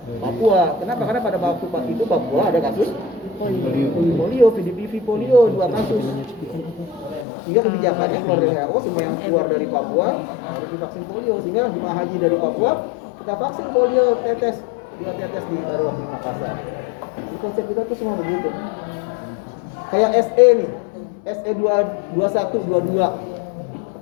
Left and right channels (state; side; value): drops out; right; at 7.2 s